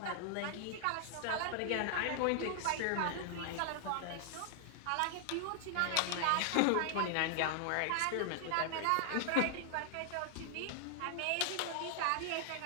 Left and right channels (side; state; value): both; different; correlation 0.00